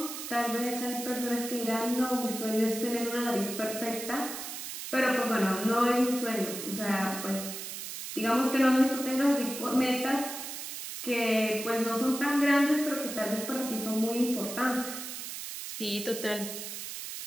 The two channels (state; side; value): noise; right; hiss, 7 dB below the sound